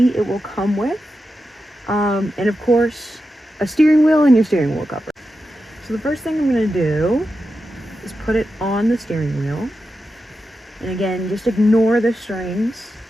it will come with. And of course, a steering wheel and your steering wheel cover. So the first thing I'm going to do is put it on the steering wheel. And again, just ignore the strings.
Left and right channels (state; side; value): normal; both; correlation 0.89